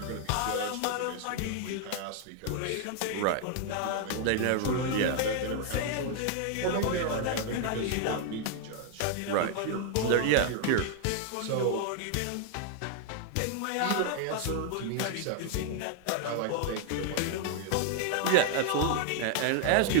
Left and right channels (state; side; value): different; both; correlation 0.00